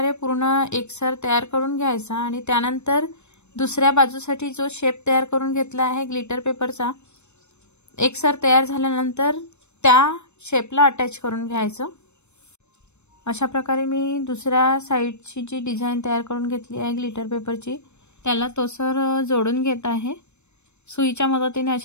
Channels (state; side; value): late; right; 0.82 ms